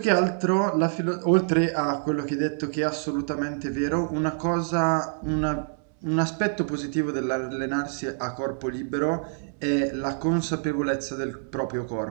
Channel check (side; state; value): left; silent; 61 dB below the other